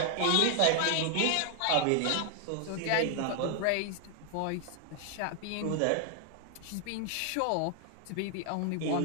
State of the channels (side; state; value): both; different; correlation 0.00